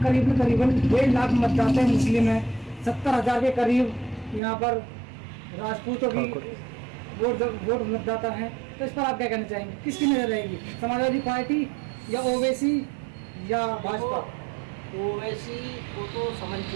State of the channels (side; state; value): left; drops out; at 4.4 s